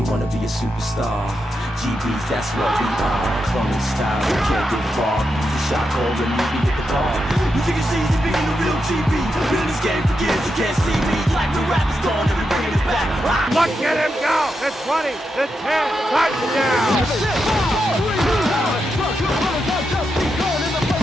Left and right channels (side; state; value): both; normal; correlation 0.86